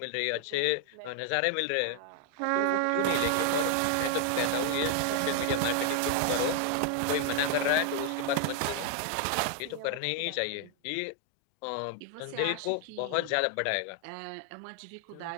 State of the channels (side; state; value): both; different; correlation 0.00